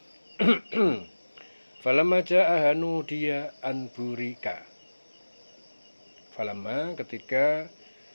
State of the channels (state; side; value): inverted; both; correlation -1.00